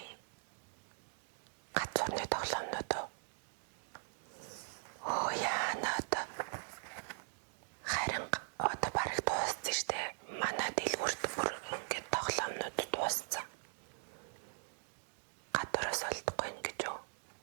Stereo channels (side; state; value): left; silent; digital silence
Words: газрын тоглоомнууд уу? Оо яанаад харин одоо бараг дууссан штэ. Манай дэлгүүрт бүр ингээд тоглоомнууд дууссан. Гадуураас олдохгүй ингэж үү?